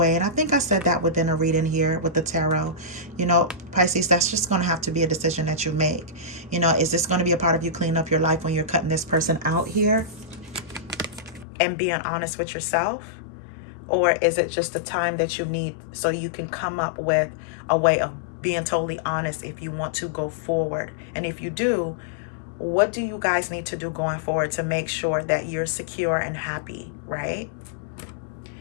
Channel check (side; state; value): right; drops out; at 11.5 s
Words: And I think I said that within a reading here with the tarot. You know, Pisces, that's just going to have to be a decision that you make. You know, is this going to be a part of you cleaning up your life when you're cutting this person out here and being honest with yourself? Or is it just the time that you need so you can come up with a way of being totally honest if you want to go forward? And if you do, what do you guys need to do going forward to make sure that you're secure and happy, right?